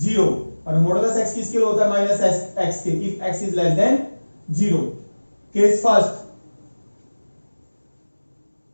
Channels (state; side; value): inverted; both; correlation -1.00